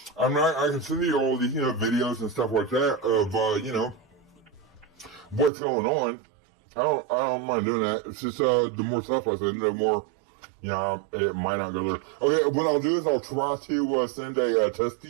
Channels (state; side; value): drops out; left; at 5.5 s